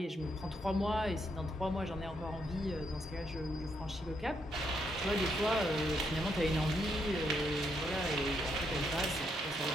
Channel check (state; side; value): normal; both; correlation 0.77